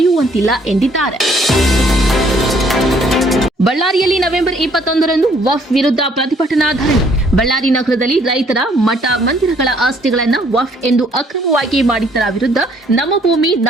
ಎಂದಿದ್ದಾರೆ. ಬಳ್ಳಾರಿಯಲ್ಲಿ ನವೆಂಬರ್ 21ರಂದು ವಫ್ ವಿರುದ್ಧ ಪ್ರತಿಭಟನಾ ಧರಣಿ. ಬಳ್ಳಾರಿ ನಗರದಲ್ಲಿ ರೈತರ ಮಠ ಮಂದಿರಗಳ ಆಸ್ತಿಗಳನ್ನು ವಫ್ ಎಂದು ಅಕ್ರಮವಾಗಿ ಮಾಡಿದ್ದರ ವಿರುದ್ಧ ನಮ್ಮ ಭೂಮಿ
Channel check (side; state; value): both; normal; correlation 0.63